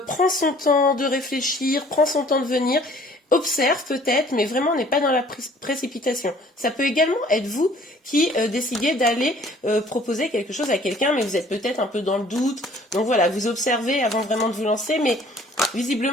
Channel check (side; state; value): both; normal; correlation 0.55